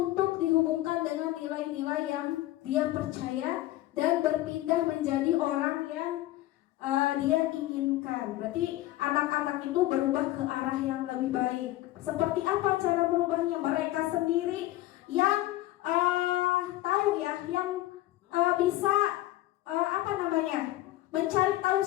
dihubungkan dengan nilai-nilai yang dia percaya dan berpindah menjadi orang yang dia inginkan. Berarti anak-anak itu berubah ke arah yang lebih baik. Seperti apa cara berubahnya? Mereka sendiri yang tahu ya, yang bisa mencari tahu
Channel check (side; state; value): right; quieter; 16.1 dB